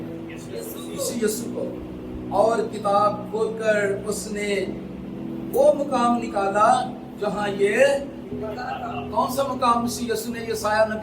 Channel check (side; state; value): both; identical; correlation 1.00